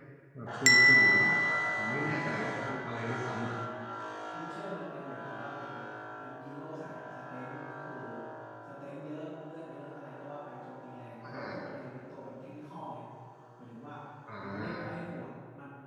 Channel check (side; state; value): both; identical; correlation 1.00